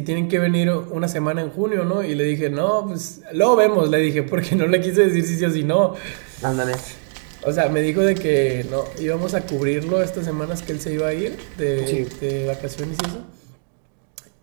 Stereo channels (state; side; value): silent; left; digital silence